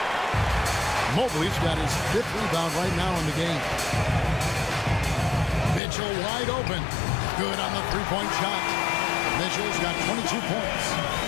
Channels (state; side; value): drops out; right; at 5.8 s